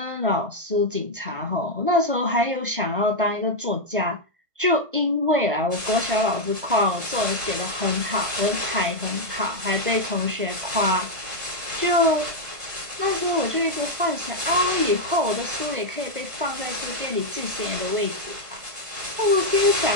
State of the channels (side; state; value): left; late; 1.5 ms